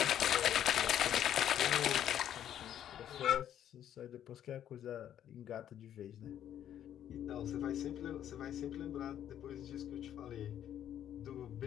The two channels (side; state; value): right; quieter; 10.5 dB